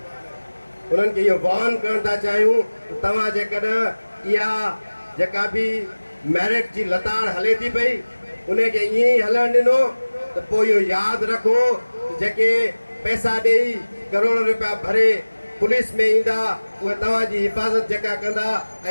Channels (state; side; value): inverted; both; correlation -1.00